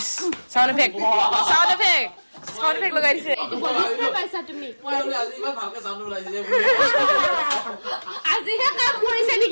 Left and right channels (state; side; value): inverted; both; correlation -1.00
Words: সাউন্ড ইফেক্ট লগাই দিছে পাইছা তুমি আজিহে কাম কৰিছে